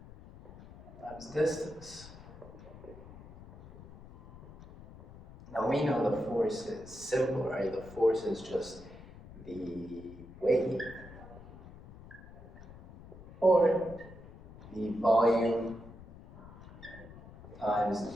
times distance. Now we know the force is simple, right? The force is just the weight or the volume times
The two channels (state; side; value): noise; left; rumble, 18 dB below the sound